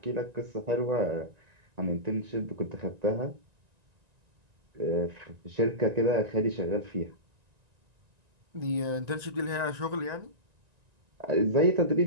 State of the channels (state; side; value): late; left; 1.9 ms